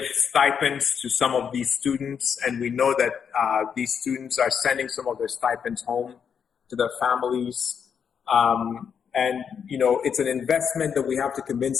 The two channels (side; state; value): right; quieter; 7.2 dB